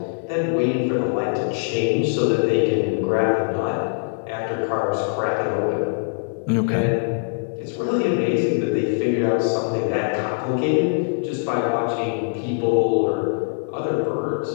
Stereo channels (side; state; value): right; silent; digital silence